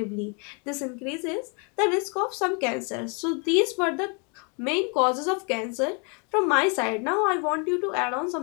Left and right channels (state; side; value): quieter; right; 35.6 dB